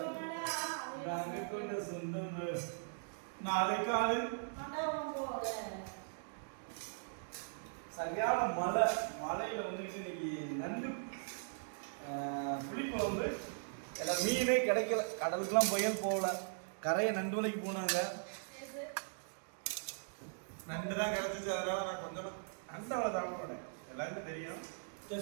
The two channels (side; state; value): left; silent; digital silence